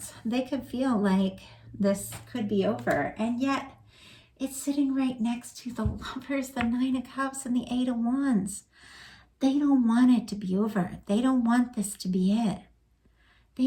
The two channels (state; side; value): identical; both; correlation 1.00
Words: They could feel like this could be over. And yet it's sitting right next to the Lovers, the Nine of Cups, and the Eight of Wands. They don't want it to be over. They don't want this to be it.